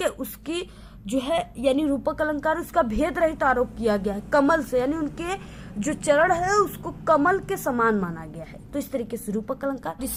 है, उसकी जो है यानी रूपक अलंकार, उसका भेद रहित आरोप किया गया है कमल से, यानी उनके जो चरण है उसको कमल के समान माना गया है। तो इस तरीके से रूपक अलंकार।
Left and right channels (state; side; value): identical; both; correlation 1.00